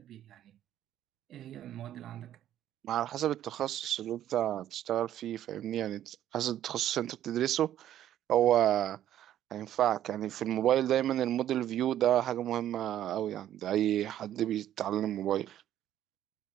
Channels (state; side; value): quieter; left; 11.7 dB